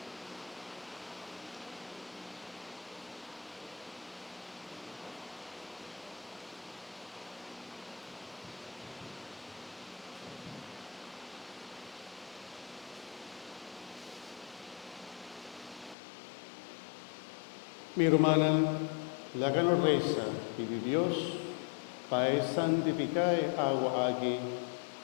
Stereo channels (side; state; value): right; drops out; at 16.0 s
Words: Mi hermana, la que nos reza, pide Dios, para santificar agua aquí,